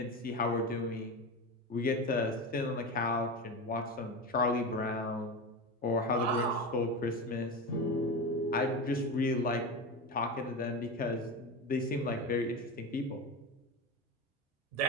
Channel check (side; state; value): both; normal; correlation 0.22